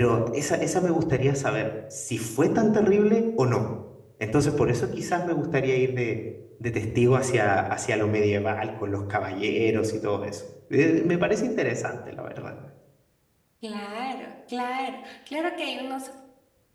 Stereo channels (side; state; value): both; identical; correlation 1.00